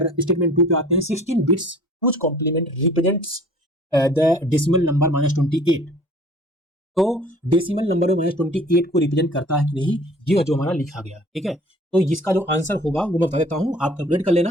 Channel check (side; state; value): both; normal; correlation 0.49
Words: स्टेटमेंट 2 पे आते हैं। 16 bits whose complement represents the decimal number -28, तो डेसिमल नंबर में -28 को रिप्रेजेंट करता है कि नहीं, ये जो हमारा लिखा गया। ठीक है, तो इसका जो आंसर होगा वो मैं बता देता हूं, आप कैलकुलेट कर लेना